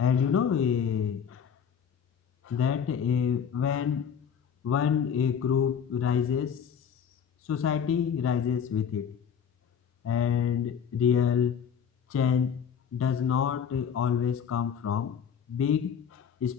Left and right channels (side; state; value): right; quieter; 7.6 dB